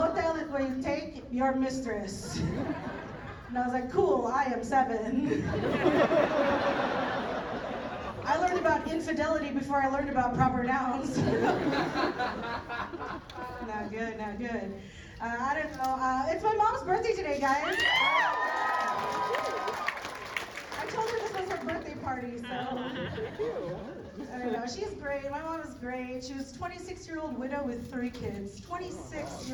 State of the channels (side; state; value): both; identical; correlation 1.00